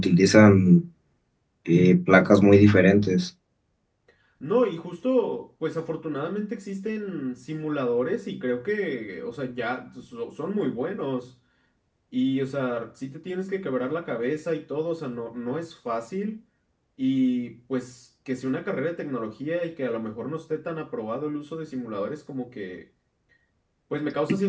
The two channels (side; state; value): both; identical; correlation 1.00